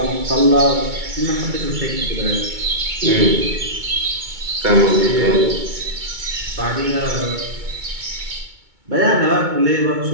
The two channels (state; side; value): late; left; 2.2 ms